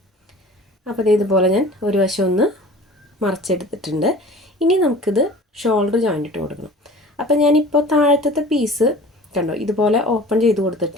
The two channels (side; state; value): both; normal; correlation 0.43